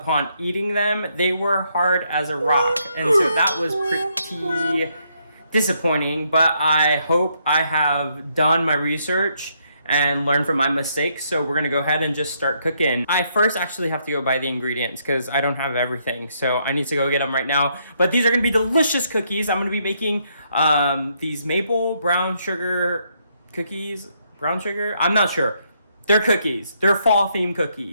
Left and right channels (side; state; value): both; inverted; correlation -0.74